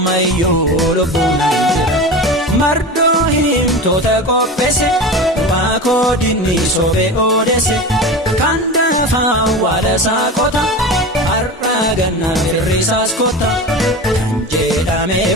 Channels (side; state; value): both; normal; correlation 0.28